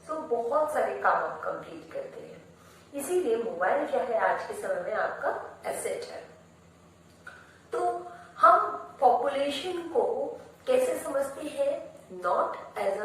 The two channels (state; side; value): identical; both; correlation 1.00